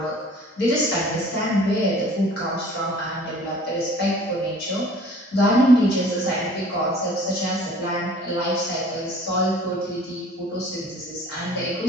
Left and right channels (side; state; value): both; normal; correlation 0.49